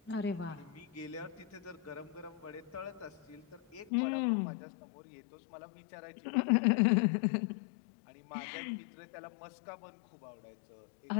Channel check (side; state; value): right; drops out; at 3.9 s